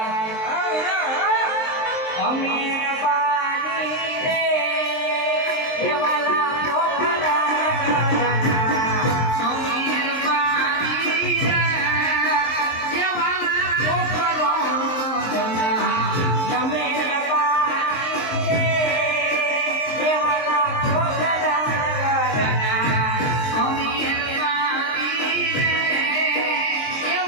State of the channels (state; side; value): late; right; 23 ms